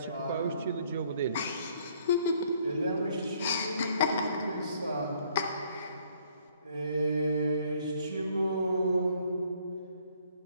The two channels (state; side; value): inverted; both; correlation -0.64